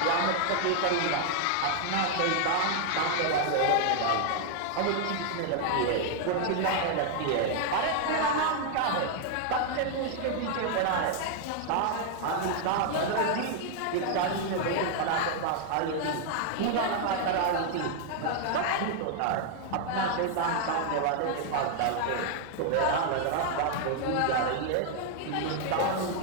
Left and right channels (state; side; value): different; both; correlation 0.00